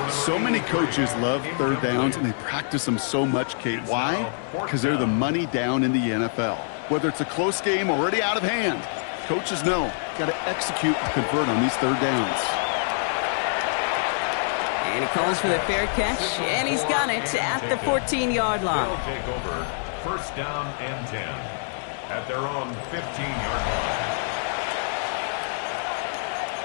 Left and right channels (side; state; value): right; silent; 61 dB below the other